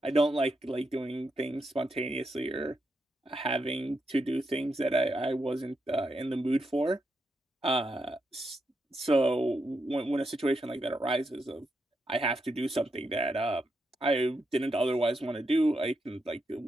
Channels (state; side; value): normal; both; correlation 0.83